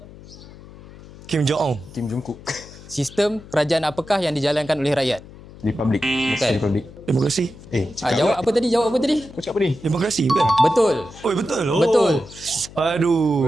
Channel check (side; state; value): left; noise; hum, 19 dB below the sound